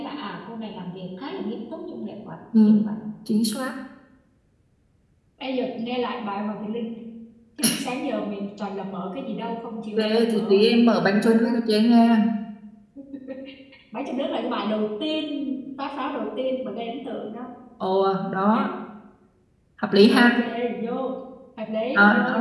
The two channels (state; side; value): identical; both; correlation 1.00